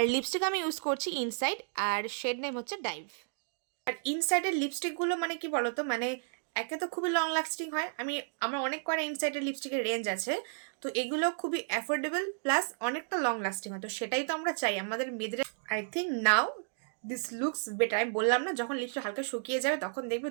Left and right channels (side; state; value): left; silent; digital silence